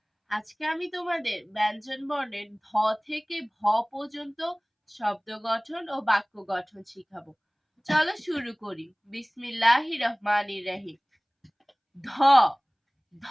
আজকে আমি তোমাদের ব্যঞ্জন বর্ণের ধ থেকে ভ পর্যন্ত শব্দ গঠন ও বাক্য গঠন শিখাবো। চলো শুরু করি। বিসমিল্লাহির রহমানির রহিম। ধ,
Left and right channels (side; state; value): both; identical; correlation 1.00